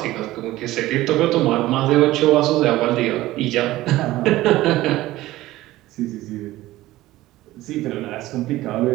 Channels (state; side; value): quieter; left; 16.7 dB